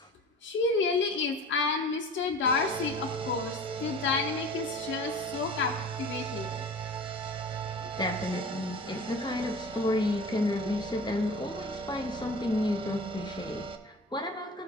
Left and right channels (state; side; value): normal; both; correlation 0.39